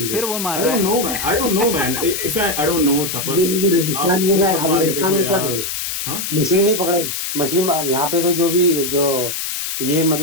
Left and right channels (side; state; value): left; noise; hiss, 4 dB below the sound